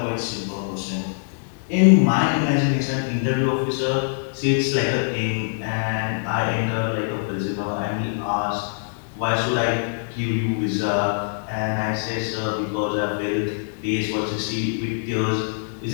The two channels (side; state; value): right; silent; 63 dB below the other